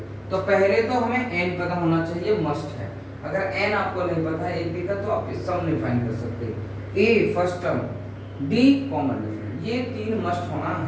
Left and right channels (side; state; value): both; identical; correlation 1.00